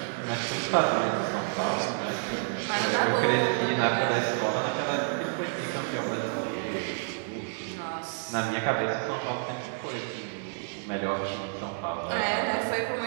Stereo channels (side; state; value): left; silent; digital silence